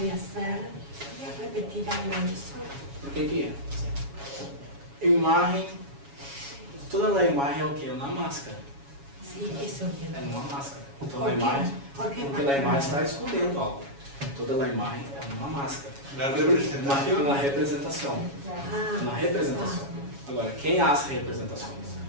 hacer. ¿Podrías repetir algo de eso? Porque aqui, imagem, toda a imagem é o que? É uma máscara. Sí, eso É quiero. uma máscara. Então ¿Por a qué? imagem, ¿Por qué porque a imagem está escondendo algo. Toda a imagem é uma máscara. La Uma representación. representação. Ah, Uma representação. Agora, quem as representações?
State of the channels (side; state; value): left; late; 7.2 ms